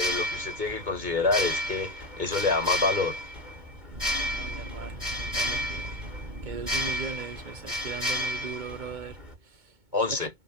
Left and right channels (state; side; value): late; left; 2.2 ms